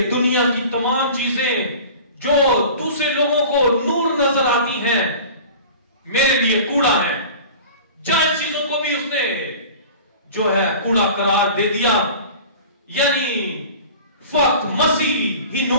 دنیا کی تمام چیزیں جو دوسرے لوگوں کو نور نظر آتی ہیں میرے لیے کوڑا ہے. جائز چیزوں کو بھی اس نے جو ہے کوڑا قرار دے دیا. یعنی فقط مسیح ہی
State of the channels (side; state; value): both; inverted; correlation -0.40